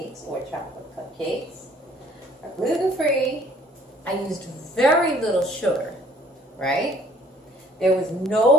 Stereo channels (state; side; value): normal; both; correlation 0.59